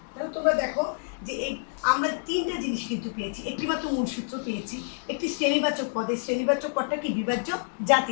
তাহলে তোমরা দেখো যে এই আমরা তিনটা জিনিস কিন্তু পেয়েছি, একটিমাত্র মূল সূত্র পেয়েছি, একটি শ্রেণীবাচক পদ, এই শ্রেণীবাচক পদটা কি বিভাজ্য জাতি,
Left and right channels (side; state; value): right; silent; digital silence